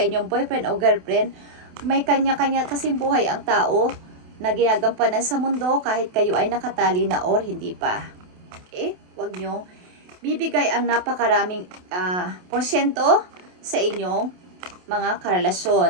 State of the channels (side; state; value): left; late; 28 ms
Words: inyong boyfriend o girlfriend. May kanya-kanya kasing buhay ang tao na ginagampanan sa mundo kahit kayo ay nakatali na or hindi pa. Okay? Huwag nyo bibigay ang napakaraming porsyento sa inyong mga